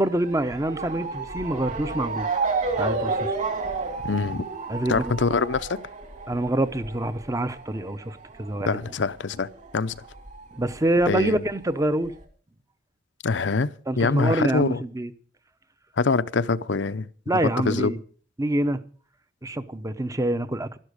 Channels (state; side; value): normal; both; correlation 0.42